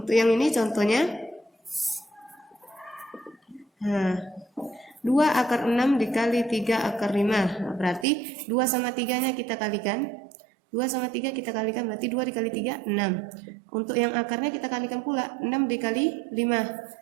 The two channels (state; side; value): drops out; left; at 8.1 s